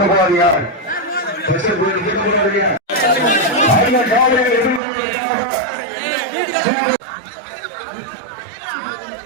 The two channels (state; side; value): drops out; left; at 4.8 s